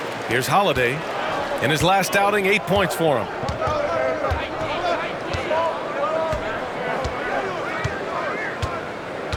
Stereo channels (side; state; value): both; identical; correlation 1.00